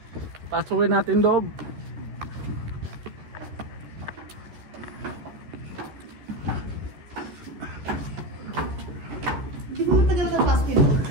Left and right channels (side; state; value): left; late; 14 ms